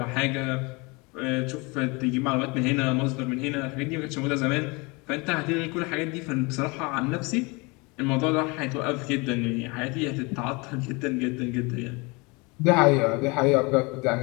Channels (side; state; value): right; quieter; 27.4 dB